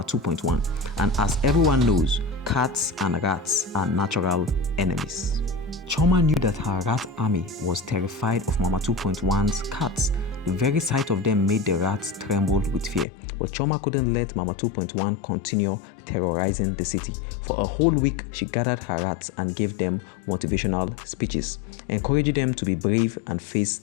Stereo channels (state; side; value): drops out; right; at 13.1 s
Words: 2.1. And as everyone knows, cats and rats are natural enemies. CHIOMA knew that her rat army was terrified of Mama 2.1's cats. The very sight of them made the rats tremble with fear. But CHIOMA couldn't let Mama 2.1 continue terrorizing the city. For a whole week, she gathered her rats and gave them motivational speeches, encouraging them to be brave and face